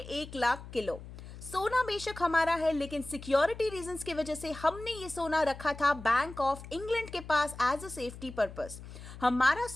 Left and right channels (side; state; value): left; noise; hum, 14 dB below the sound